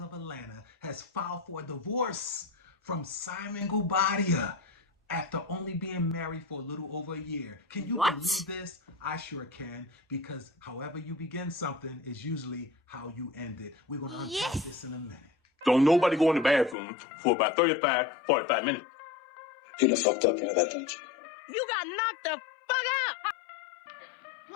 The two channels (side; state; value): right; drops out; at 16.8 s